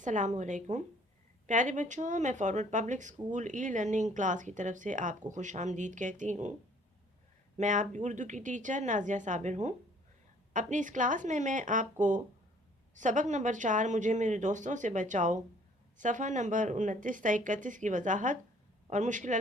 प्यारे बच्चों, मैं forward public school e learning class की तरफ से आपको खुश आमदीद कहती हूँ। मैं आपकी उर्दू की टीचर नाजिया साबिर हूँ। अपनी इस क्लास में मैं आपको सबक नंबर 4 मुझे मेरे दोस्तों से बचाओ सफ़ा नंबर 29 से 31 की वजाहत और मुश्किल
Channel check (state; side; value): normal; both; correlation 0.58